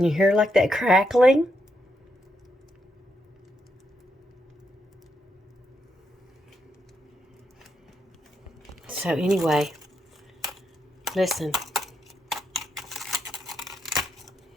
you hear like that crackling? So anyway, listen.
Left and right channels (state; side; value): normal; both; correlation 0.80